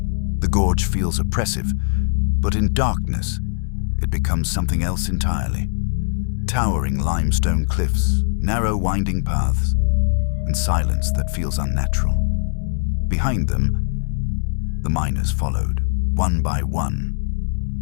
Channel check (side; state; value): right; silent; digital silence